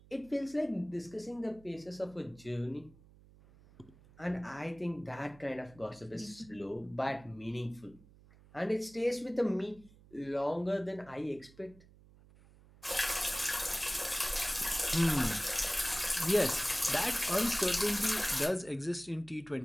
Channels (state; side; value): noise; right; hum, 24 dB below the sound